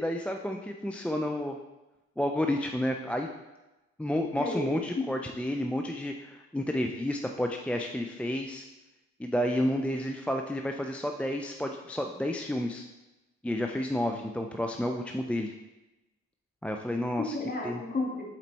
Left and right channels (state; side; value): normal; both; correlation 0.82